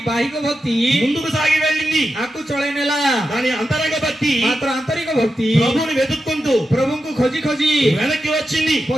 भक्ति ముందుకు సాగి వెళ్ళింది, आकु चढाइनेला। కానీ అంతరంగ భక్తి मात्र आन्तरिक भक्ति ప్రభువుని వెతుక్కుంటూ प्रभुଙ୍କୁ खोजी खोजी వెనక్కి వచ్చింది.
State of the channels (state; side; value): normal; both; correlation 0.89